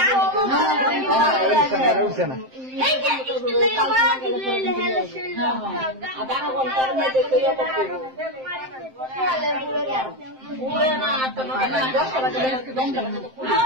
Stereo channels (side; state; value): left; late; 7.7 ms